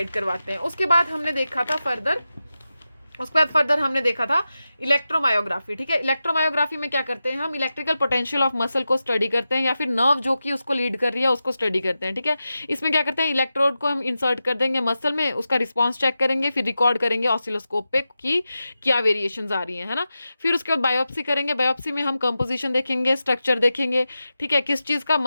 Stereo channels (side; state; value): both; inverted; correlation -0.92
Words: करवाते हैं। उसके बाद हमने देखा था फर्दर उसके बाद फर्दर हमने देखा था इलेक्ट्रोमायोग्राफी, ठीक है। इलेक्ट्रोमायोग्राफी में क्या करते हैं हम, इलेक्ट्रिकल पोटेंशियल ऑफ मसल को स्टडी करते हैं या फिर नर्व जो कि उसको लीड कर रही है उसको स्टडी करते हैं, ठीक है। इसमें क्या करते हैं, इलेक्ट्रोड को हम इंसर्ट कर देंगे मसल में, उसका रिस्पॉन्स चेक करेंगे, फिर रिकॉर्ड करेंगे ऑसिलोस्कोप पे कि क्या वेरिएशंस आ रही है ना। फिर उसके बाद बायोप्सी करेंगे, बायोप्सी में हम कंपोजिशन देखेंगे, स्ट्रक्चर देखेंगे, ठीक है, किस चीज़ का,